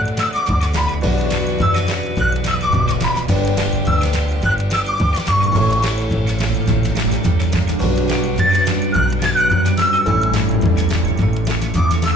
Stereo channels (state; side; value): normal; both; correlation 0.63